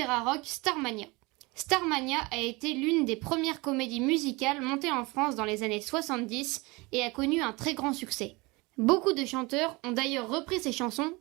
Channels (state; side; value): quieter; left; 24.8 dB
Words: rock Starmania. Starmania a été l'une des premières comédies musicales montées en France dans les années 70 et a connu un très grand succès. Beaucoup de chanteurs ont d'ailleurs repris ces chansons